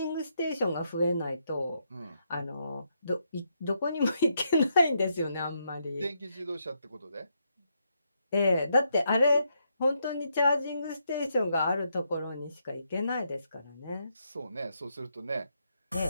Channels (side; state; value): both; inverted; correlation -0.78